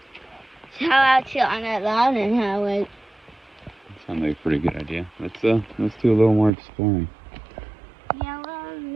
So how about you on that loud and how wait? Sounds like a pretty good idea. Let's do a little more exploring. Yeah, well, a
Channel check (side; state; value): left; drops out; at 6.5 s